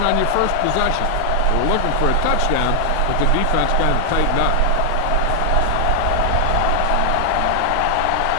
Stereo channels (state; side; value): different; both; correlation 0.00